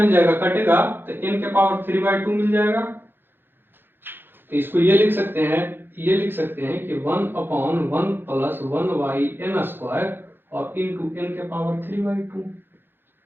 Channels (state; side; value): late; left; 0.10 ms